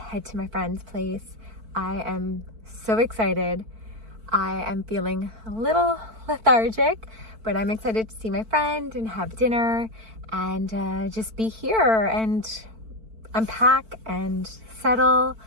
to my friend's place. I am so excited. I am feeling a little lethargic, but I'm excited to see my friend and have dinner and just be here and unpack and settle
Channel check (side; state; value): left; late; 4.5 ms